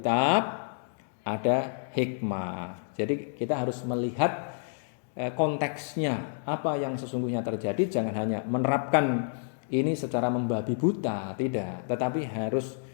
ada hikmah. Jadi kita harus melihat konteksnya apa yang sesungguhnya terjadi, jangan hanya menerapkan ini secara membabi buta, tidak, tetapi harus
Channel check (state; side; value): silent; right; digital silence